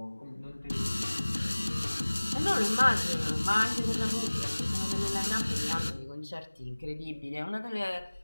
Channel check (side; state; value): both; inverted; correlation -1.00